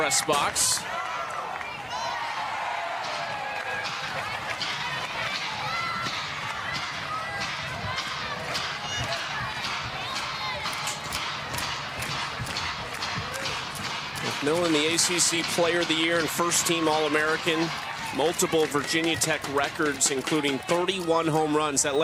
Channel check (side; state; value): both; identical; correlation 1.00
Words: box. McMillan, the ACC Player of the Year and first-team All-American. Multiple Virginia Tech records, including 31 home runs that